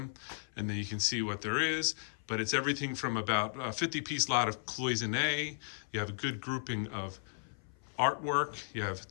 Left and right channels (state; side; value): silent; right; 54 dB below the other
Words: and then you can see what there is. But it's everything from about a 50-piece lot of cloisonne. You have a good grouping of artwork. You